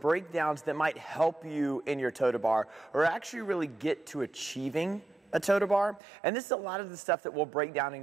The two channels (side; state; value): left; drops out; at 6.0 s